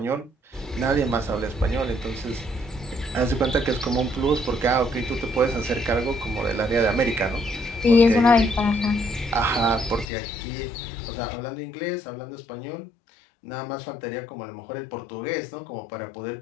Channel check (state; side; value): drops out; right; at 10.1 s